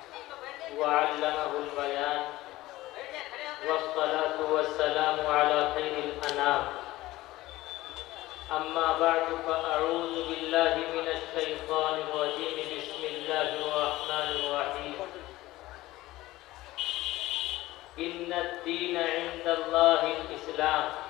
व अल्लमहुल बयान वस्सलातु वस्सलामु अला खैरिल अनाम। अम्मा बअदु फ़अऊज़ु बिल्लाहि मिनश शैतानिर रजीम। बिस्मिल्लाहिर रहमानिर रहीम। इन्नद-दीन इंदल्लाहिल इस्लाम।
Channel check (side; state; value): right; quieter; 17.6 dB